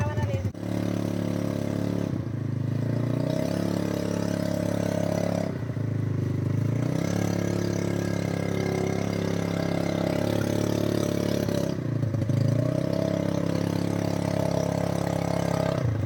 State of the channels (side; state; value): both; identical; correlation 1.00